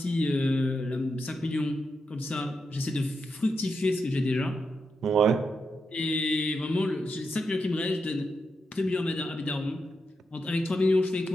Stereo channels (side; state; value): both; normal; correlation 0.85